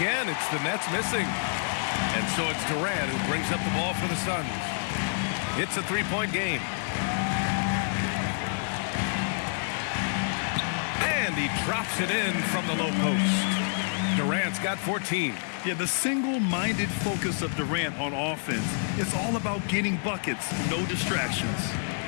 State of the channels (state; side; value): silent; right; digital silence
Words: it's the Nets missing. And so it's Durant who brings up the ball for the Suns. It's a 3-point game. And he drops it in from the low post. Durant's got 14. Yeah, the single-minded focus of Durant on offense is all about getting buckets, no distractions.